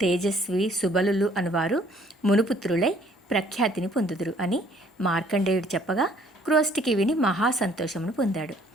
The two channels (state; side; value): normal; both; correlation 0.61